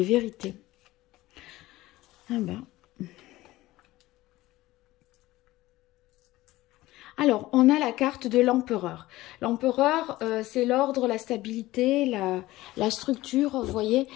vérités. Ah ben. Alors, on a la carte de l'empereur. L'empereur, c'est l'ordre, la stabilité, la structure, vous voyez.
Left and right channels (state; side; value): quieter; right; 17.5 dB